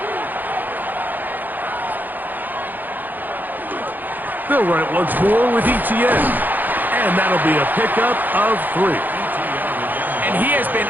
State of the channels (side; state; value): left; late; 0.085 ms